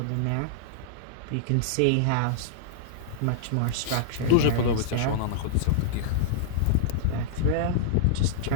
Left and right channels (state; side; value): different; both; correlation -0.01